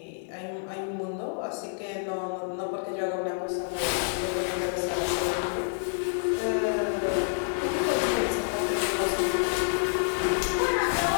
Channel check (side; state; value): right; silent; 59 dB below the other